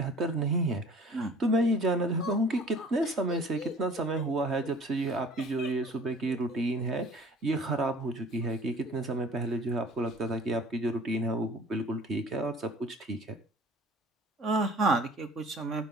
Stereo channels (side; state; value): both; normal; correlation 0.48